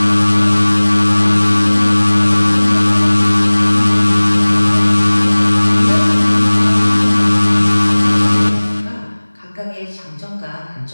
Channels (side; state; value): both; inverted; correlation -1.00